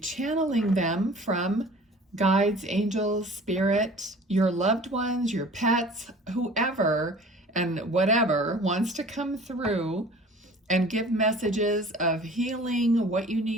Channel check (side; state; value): both; normal; correlation 0.46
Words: them from guides, angels, spirit, your loved ones, your pets, whoever and whatever wants to come through and give messages of healing, what you